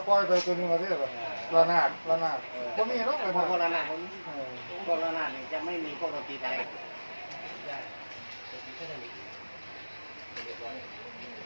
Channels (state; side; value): inverted; both; correlation -1.00